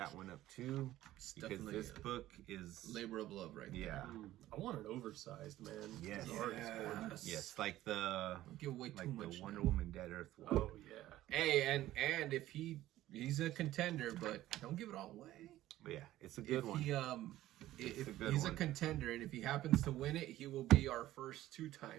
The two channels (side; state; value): left; quieter; 14.8 dB